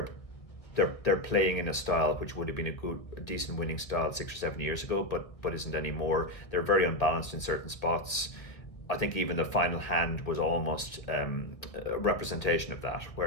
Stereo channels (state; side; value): late; right; 1.4 ms